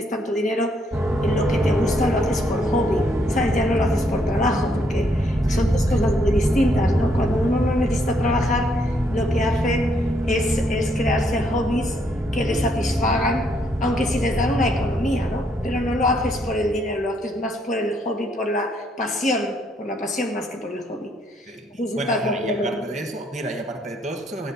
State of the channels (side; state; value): both; normal; correlation 0.72